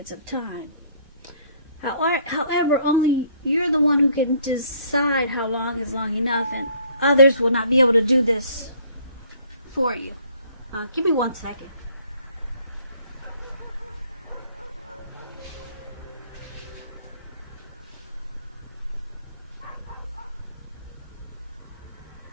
of time. However, only you're the one who can decide how long is long enough, and others will not be able to do this for you. Give me 1 second.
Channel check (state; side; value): inverted; both; correlation -0.60